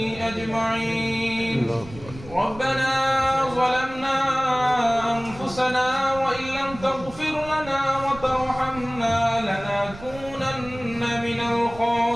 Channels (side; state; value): right; noise; rumble, 16 dB below the sound